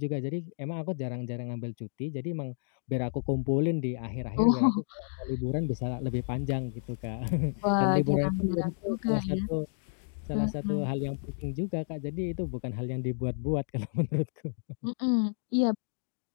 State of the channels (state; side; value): silent; right; digital silence